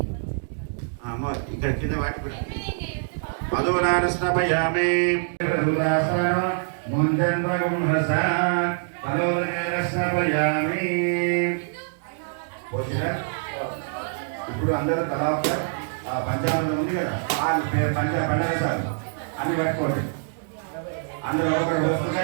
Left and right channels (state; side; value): silent; left; digital silence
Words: ఇక్కడ కింద వాటి కూడా మధురానస్నపయామి ముంజన్మగుంహసానస్నపయామి. ఇప్పుడు అందరూ తలా పంచామృతం ఉంది కదా, వాళ్ళు పంచరసాలు అన్ని పట్టుకోండి. అందులో ఒకటి